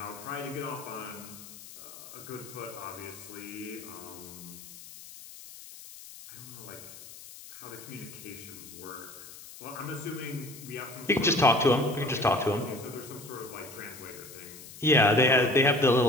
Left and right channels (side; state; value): left; noise; hiss, 16 dB below the sound